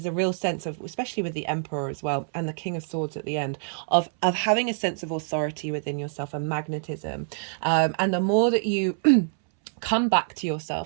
a real sense of, especially with the Emperor as well, and the King of Swords at the end, of having a sense of authority within yourself and magnetism. And the more that you come back to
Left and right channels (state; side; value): silent; left; 61 dB below the other